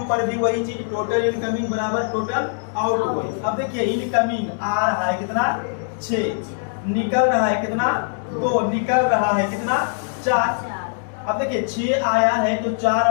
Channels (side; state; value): right; silent; digital silence